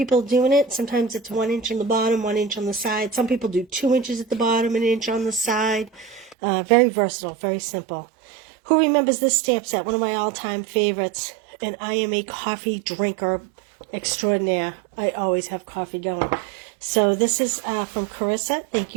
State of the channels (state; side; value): drops out; left; at 6.4 s